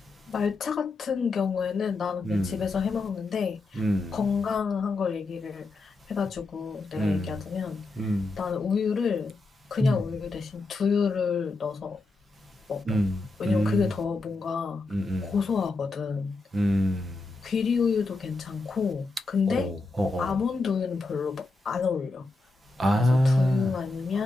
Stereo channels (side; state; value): right; quieter; 3.4 dB